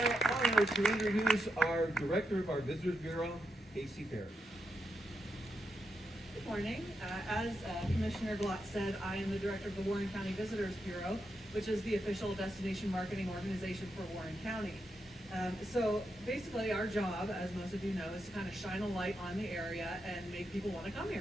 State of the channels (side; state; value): both; normal; correlation 0.85